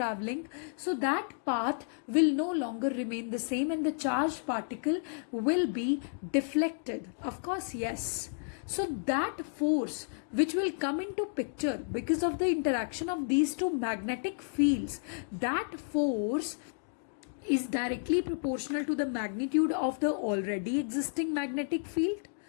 so that path will no longer remain the same, and the charged particle will be deflected. Of course, yes. So that force which will come into picture because of the interaction of these two magnetic fields, that force is directly proportional to the magnitude of the already existing magnetic field.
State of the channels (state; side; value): silent; right; digital silence